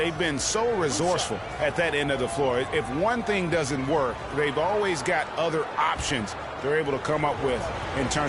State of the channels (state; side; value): identical; both; correlation 1.00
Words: been so resourceful at that end of the floor. If one thing doesn't work, they've always got other options they're able to come up with in